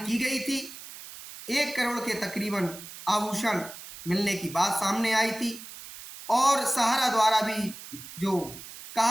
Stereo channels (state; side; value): noise; right; hiss, 14 dB below the sound